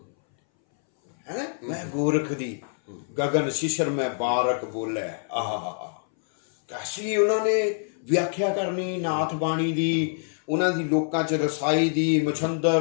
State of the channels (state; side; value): silent; right; 60 dB below the other